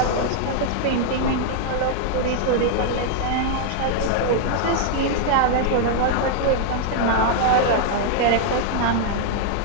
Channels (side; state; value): both; different; correlation 0.00